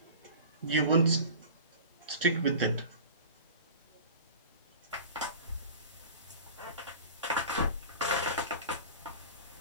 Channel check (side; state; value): both; inverted; correlation -0.38